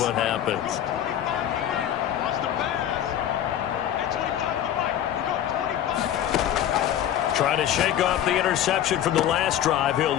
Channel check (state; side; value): quieter; right; 10.8 dB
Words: what happens. Trying to shake off the interception from the last drive. He'll